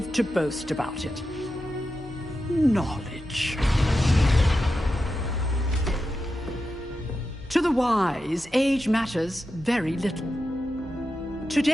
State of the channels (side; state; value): both; normal; correlation 0.90